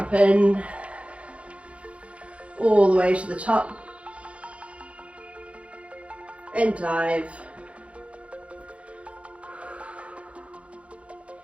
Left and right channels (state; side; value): late; left; 0.062 ms